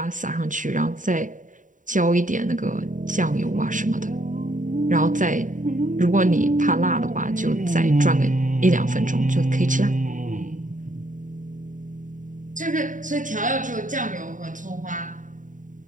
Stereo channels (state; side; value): late; left; 0.38 ms